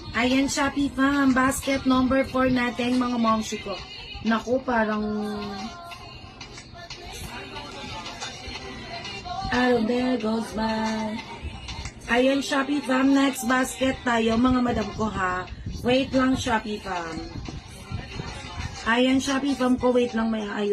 Ayan, Shopee Fam, basket number 4 natin, mga momshi ko. Naku, parang there goes by. Ayan, Shopee Fam, next basket tayo, mga madam ko ha. Wait lang, Shopee Fam. Ayan, Shopee Fam ko, wait lang, may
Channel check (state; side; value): identical; both; correlation 1.00